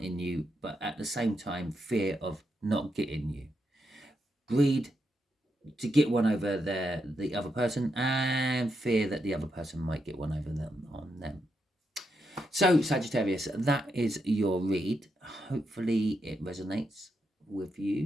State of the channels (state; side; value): normal; both; correlation 0.83